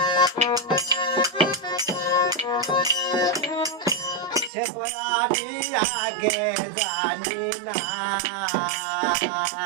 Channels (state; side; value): drops out; left; at 4.5 s